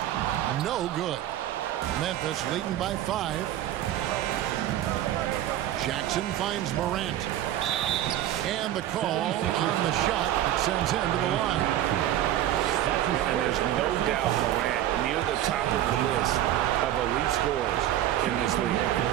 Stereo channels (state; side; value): quieter; left; 12.6 dB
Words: No good. Memphis leading by 5. Jackson finds Morant. And the call on the shot that sends him to the line. And there's no doubt Morant near the top of the list of elite scorers in this